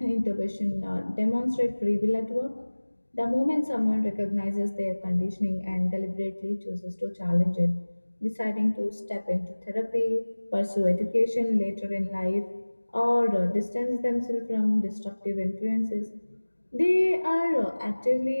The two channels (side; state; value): both; inverted; correlation -1.00